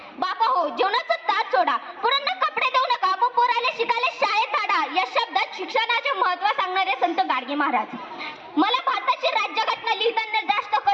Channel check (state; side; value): identical; both; correlation 1.00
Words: बापा हो, जेवणाचं ताट सोडा, पोरांना कपडे देऊ नका, मग पोराले शिकायला शाळेत धाडा. या शब्दात शिक्षणाचे महत्त्व सांगणारे संत गाडगे महाराज. मला भारताची राज्यघटना लिहिताना जास्त